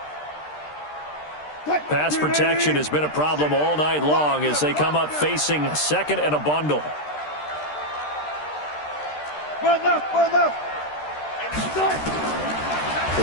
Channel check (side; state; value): right; late; 13 ms